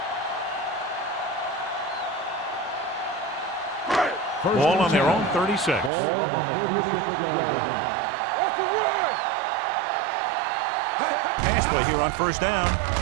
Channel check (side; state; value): left; drops out; at 5.9 s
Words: Ball on their own 36. Ball on the 36-yard line. Off the run! Pass play here on first down.